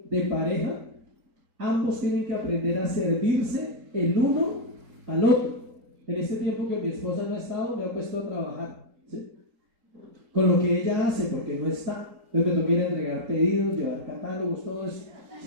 de pareja, ambos tienen que aprender a servirse el uno al otro. En este tiempo que mi esposa no ha estado, me ha puesto a trabajar, ¿sí? Con lo que ella hace, porque no está. Entonces me toca ir a entregar pedidos, llevar catálogos, todo eso,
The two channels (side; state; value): left; late; 4.4 ms